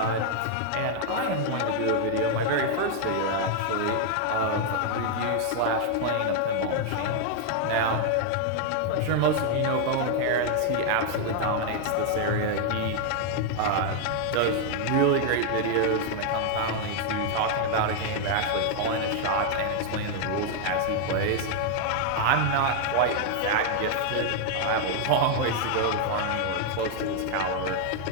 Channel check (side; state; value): both; different; correlation 0.00